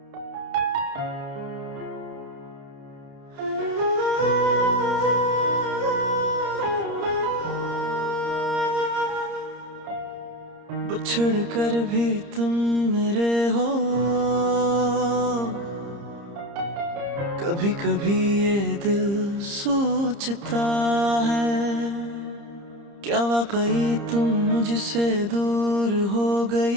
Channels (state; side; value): late; left; 30 ms